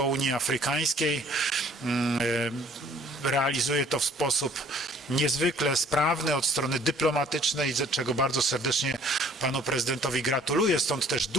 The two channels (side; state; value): both; normal; correlation 0.57